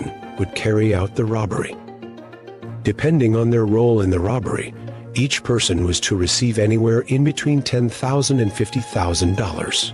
would carry out the robbery. Depending on their role in the robbery, each person was to receive anywhere in between $10,000 and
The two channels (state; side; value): identical; both; correlation 1.00